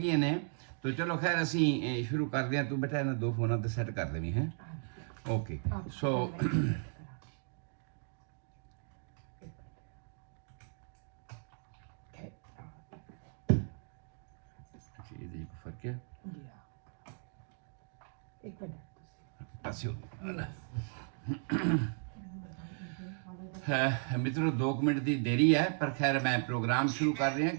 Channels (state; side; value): silent; left; 54 dB below the other